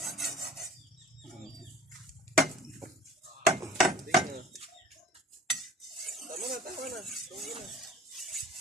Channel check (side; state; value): both; normal; correlation 0.46